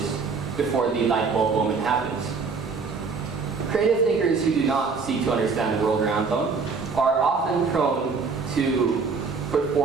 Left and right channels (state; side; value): quieter; left; 4.9 dB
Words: before the light bulb moment happens. Creative thinkers who do not seek to understand the world around them are often prone to put